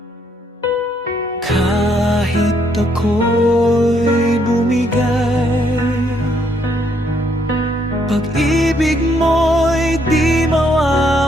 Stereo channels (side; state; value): both; normal; correlation 0.71